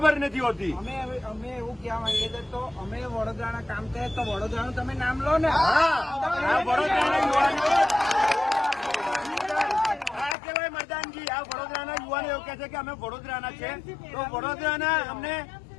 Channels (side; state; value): right; drops out; at 10.4 s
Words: નથી હોતી. અમે એવું કહેવા માંગીએ છીએ તો અમે વડોદરાના કામ કરીએ તો વડોદરાનું તમે નામ લો ને. વડોદરાના યુવાનો આ કહેવાય મરદાનજી. આ વડોદરાના યુવાનો એવું કહે છે કે અમે વડોદરાના છે તો વડોદરાના અમને